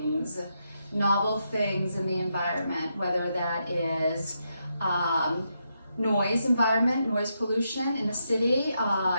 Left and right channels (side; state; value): both; inverted; correlation -0.82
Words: in the environment, whether that is noise environment, noise pollution in the city.